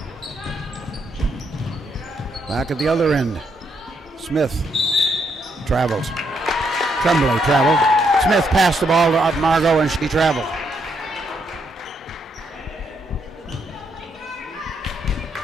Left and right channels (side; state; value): both; normal; correlation 0.76